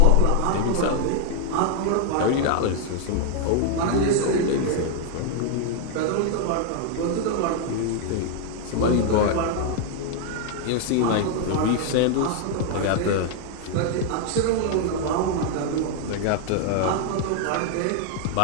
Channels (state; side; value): different; both; correlation 0.00